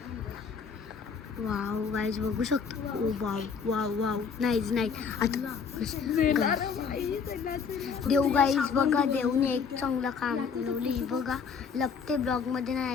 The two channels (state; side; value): quieter; right; 6.0 dB